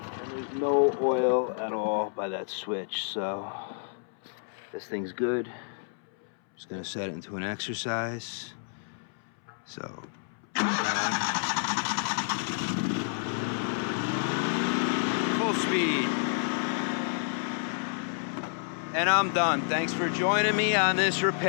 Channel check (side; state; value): right; silent; 58 dB below the other